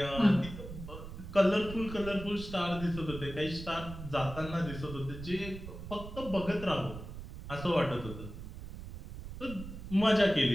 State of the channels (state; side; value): noise; right; rumble, 11 dB below the sound